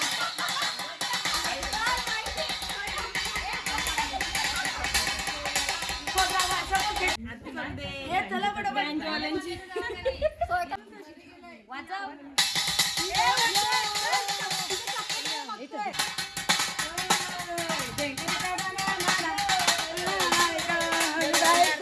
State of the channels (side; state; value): both; identical; correlation 1.00